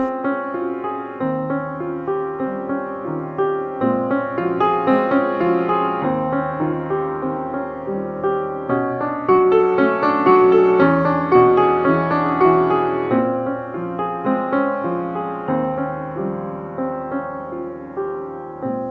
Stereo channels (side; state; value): both; identical; correlation 1.00